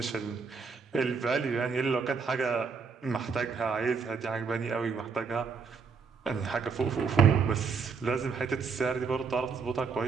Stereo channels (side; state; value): left; quieter; 5.3 dB